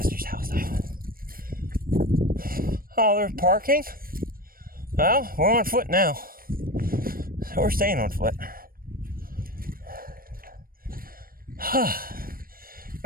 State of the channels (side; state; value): left; late; 0.42 ms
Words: house though. Oh, there's parking? Well, we're on foot now. So we're staying on foot.